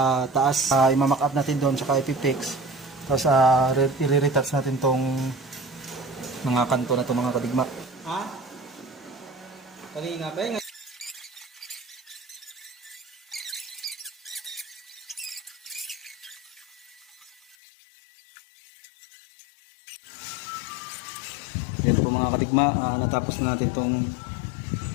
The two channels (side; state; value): right; drops out; at 17.6 s